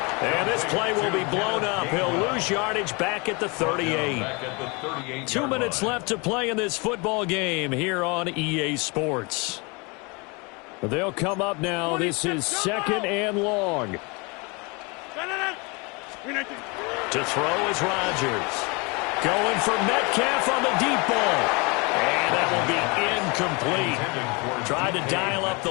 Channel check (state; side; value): quieter; right; 29.1 dB